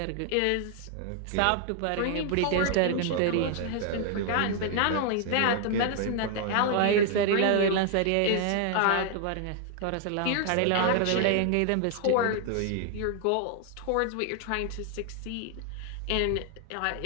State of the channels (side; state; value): both; different; correlation 0.00